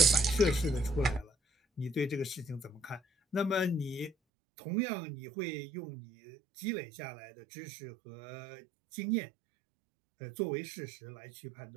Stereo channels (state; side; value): drops out; left; at 4.2 s